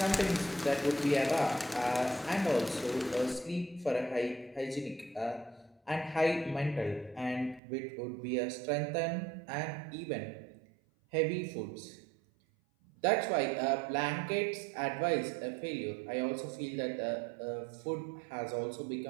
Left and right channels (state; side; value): drops out; left; at 7.6 s